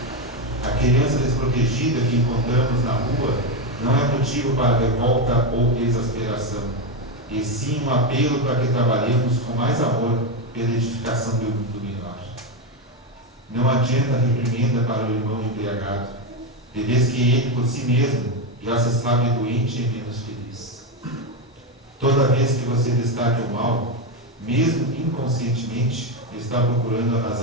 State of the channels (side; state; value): both; normal; correlation 0.10